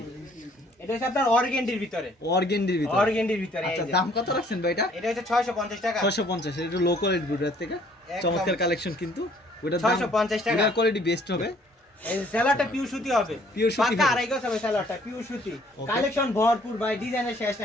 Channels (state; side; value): normal; both; correlation 0.60